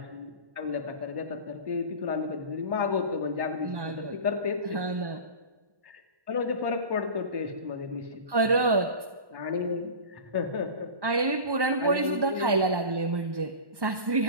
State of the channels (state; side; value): late; left; 1.1 ms